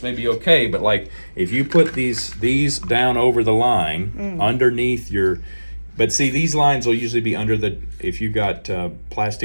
may be okay, but like if you put these down over the line underneath your, but see, these lines will usually be under the, if you got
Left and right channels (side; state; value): both; inverted; correlation -1.00